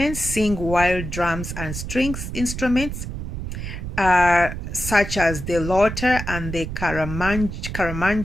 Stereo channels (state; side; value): noise; right; rumble, 6 dB below the sound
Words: sing while drums and strings instruments such as the loter and the